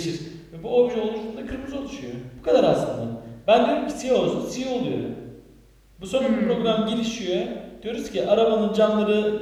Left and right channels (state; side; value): identical; both; correlation 1.00